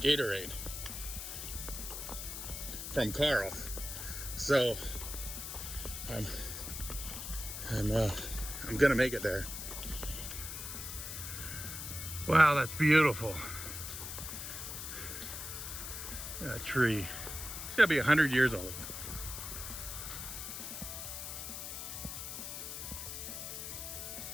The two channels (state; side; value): noise; left; hiss, 7 dB below the sound